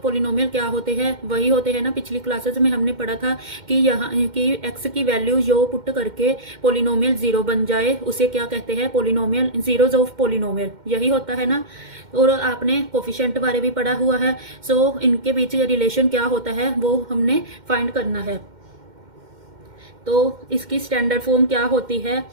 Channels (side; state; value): left; late; 2.1 ms